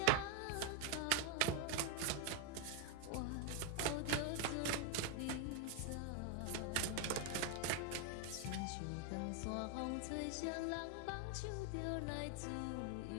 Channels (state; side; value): different; both; correlation 0.01